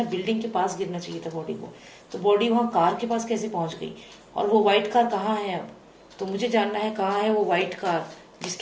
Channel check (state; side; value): identical; both; correlation 1.00